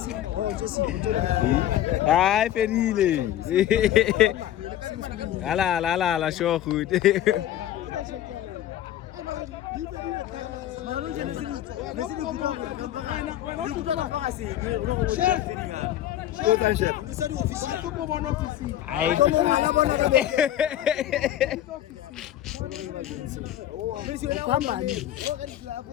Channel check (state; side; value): quieter; right; 12.4 dB